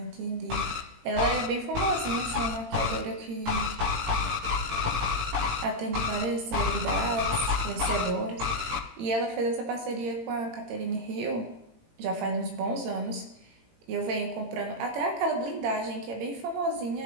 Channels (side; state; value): left; late; 18 ms